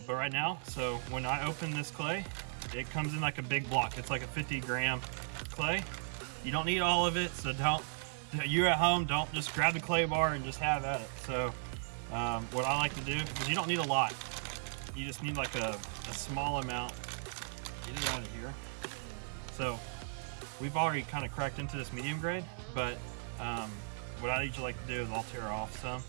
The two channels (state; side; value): silent; left; 53 dB below the other